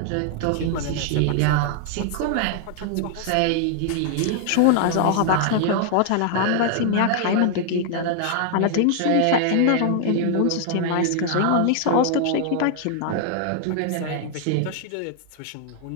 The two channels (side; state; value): both; different; correlation 0.00